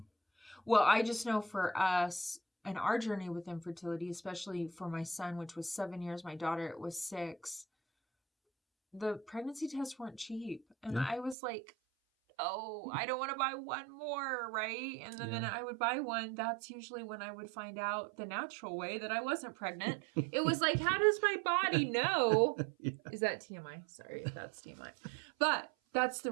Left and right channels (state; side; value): drops out; left; at 11.4 s